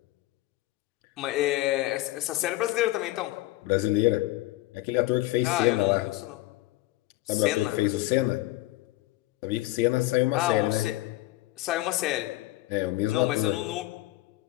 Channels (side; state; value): right; quieter; 17.9 dB